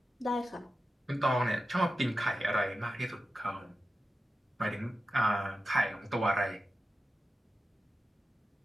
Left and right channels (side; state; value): both; normal; correlation 0.92